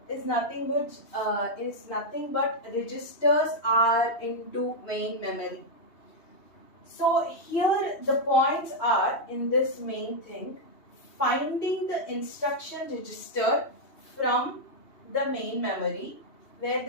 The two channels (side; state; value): right; late; 2.8 ms